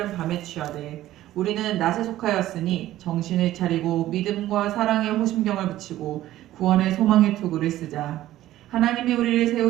밤에 취하되 우리는 낮에 속하였으니 정신을 차리고 믿음과 사랑의 호심경을 붙이고 구원의 소망의 투구를 쓰자. 하나님이 우리를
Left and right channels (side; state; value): left; quieter; 14.4 dB